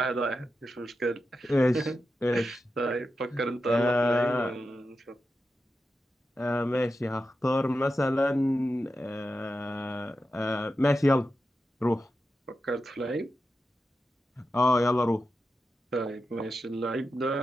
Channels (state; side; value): normal; both; correlation 0.90